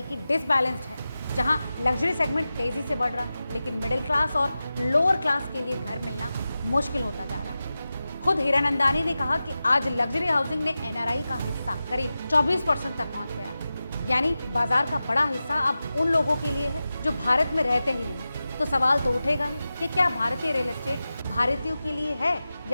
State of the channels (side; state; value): both; inverted; correlation -0.94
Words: डिसबैलेंस्ड है, जहां लग्जरी सेगमेंट तेजी से बढ़ रहा है लेकिन मिडिल क्लास और लोअर क्लास के लिए घर मिलना मुश्किल होता जा रहा है। खुद हीरानंदानी ने कहा कि आज लग्जरी हाउसिंग ने एनआरआई का हिस्सा करीब 24% तक पहुंच गया, यानी बाजार का बड़ा हिस्सा अब उन लोगों के लिए है जो भारत में रहते ही नहीं। तो सवाल तो उठेगा ही कि क्या भारतीय रियल एस्टेट भारतीयों के लिए है